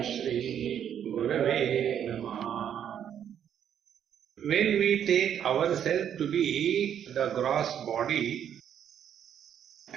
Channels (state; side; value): quieter; left; 9.3 dB